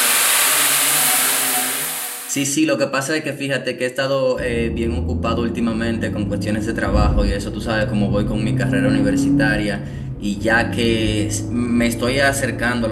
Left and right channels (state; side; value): identical; both; correlation 1.00